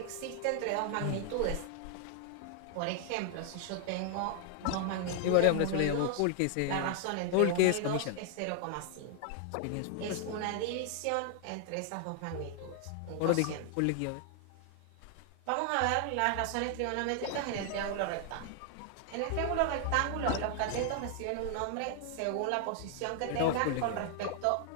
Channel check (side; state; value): both; different; correlation 0.00